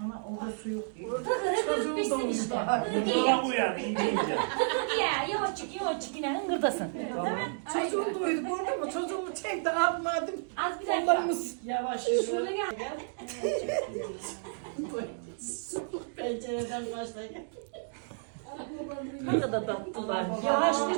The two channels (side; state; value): left; silent; digital silence